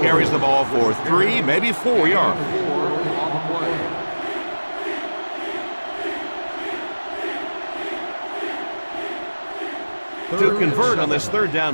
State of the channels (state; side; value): inverted; both; correlation -1.00